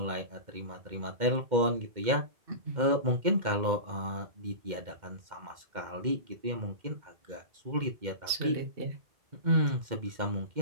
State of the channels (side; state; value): left; late; 2.1 ms